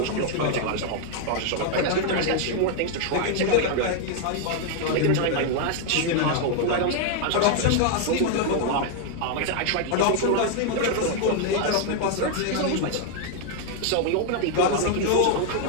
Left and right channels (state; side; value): different; both; correlation 0.00